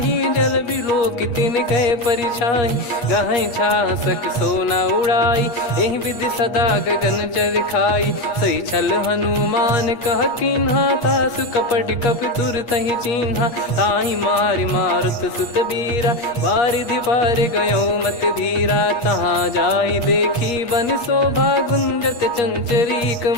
जल बिलोक तिन गए परिछाई। गहई छासक सोना उड़ाई, एहि विधि सदा गगन चर खाई। सही छल हनुमान कह कीन्हा, तासु कपट कप तुर तहि चिन्हा। ताहि मारि मारुत सुत बीरा, बारिधि पार गयो मत धीरा। तहाँ जाई देखी बन शोभा, गुंजत चंचरीक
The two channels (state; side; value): late; right; 8.4 ms